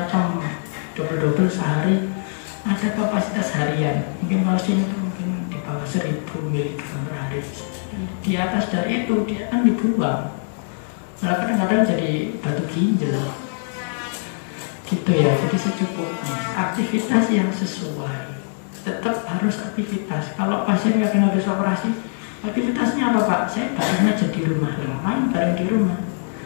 double sehari, ada kapasitas harian. Mungkin kalsium itu mungkin di bawah 1000 mg per hari. Di atas dari itu dia akan dibuang. Malah kadang-kadang jadi batu ginjal. Gitu ya, jadi secukupnya. Aktivitas yang sesuai. Tetap harus aktivitas. Kalau pasien nggak pernah habis operasi, aktivitasnya apa Pak? Saya bareng aja di rumah. Ngapain bareng di rumah?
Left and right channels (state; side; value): silent; right; digital silence